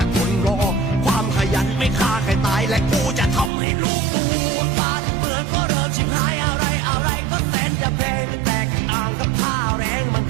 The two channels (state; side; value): drops out; left; at 3.5 s